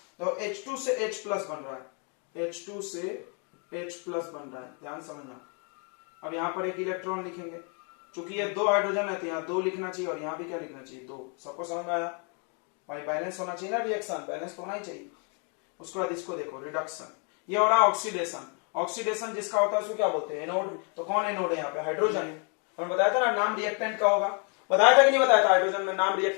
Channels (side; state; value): right; quieter; 38.1 dB